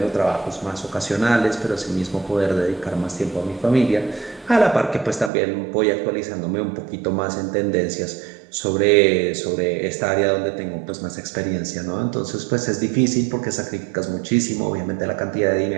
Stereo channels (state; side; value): drops out; left; at 5.3 s